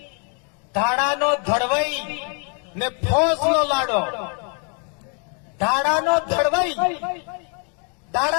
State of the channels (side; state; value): right; quieter; 39.8 dB